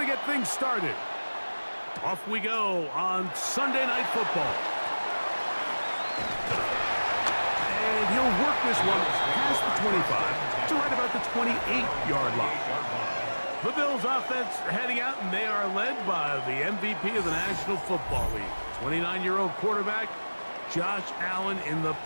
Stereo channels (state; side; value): inverted; both; correlation -1.00